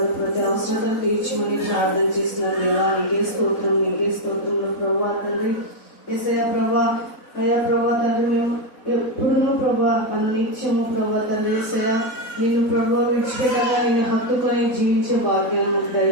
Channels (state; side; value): late; right; 4.0 ms